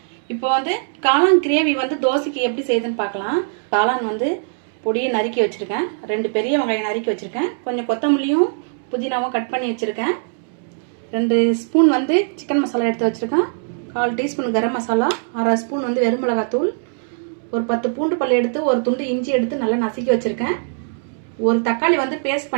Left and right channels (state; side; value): silent; left; digital silence